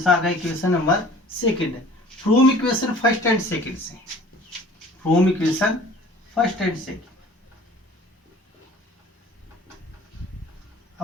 आ गया? इक्वेशन नंबर सेकेंड है from equation first and second से। From equation first and second.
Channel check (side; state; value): both; normal; correlation 0.48